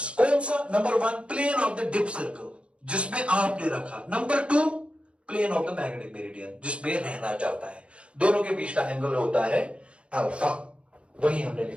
कौन सा? Number one plane of the dip circle जिसमें आपने रखा, number two plane of the magnetic meridian जिसमें रहना चाहता है। दोनों के बीच का एंगल होता है अल्फा, वही हमने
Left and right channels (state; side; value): late; left; 0.059 ms